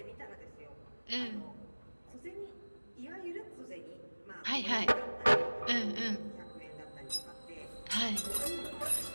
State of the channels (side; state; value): both; inverted; correlation -1.00